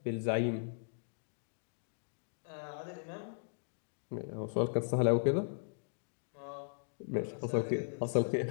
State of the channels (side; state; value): right; silent; digital silence